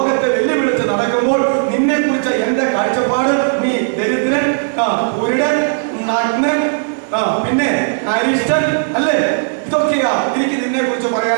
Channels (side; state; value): left; silent; digital silence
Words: വെല്ലുവിളിച്ച് നടക്കുമ്പോൾ നിന്നെ കുറിച്ച് എന്റെ കാഴ്ചപ്പാട് നീ ദരിദ്രൻ, കുരുടൻ, നഗ്നൻ, പിന്നെ അരിഷ്ടൻ അല്ലേ, ഇതൊക്കെയാ എനിക്ക് നിന്നെ കുറിച്ച്